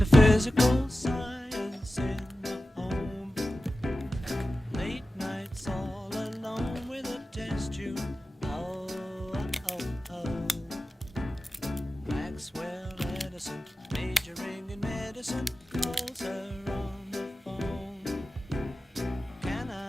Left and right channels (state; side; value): normal; both; correlation 0.94